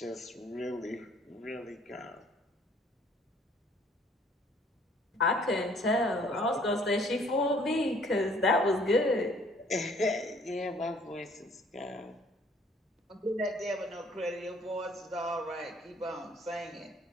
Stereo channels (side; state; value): both; normal; correlation 0.59